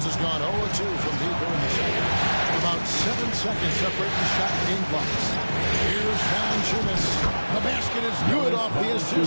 has gone 0-2 from deep here in the second. About 7 seconds separate the shot and game clocks. Here's Valanciunas. The basket is good off the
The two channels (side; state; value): both; inverted; correlation -1.00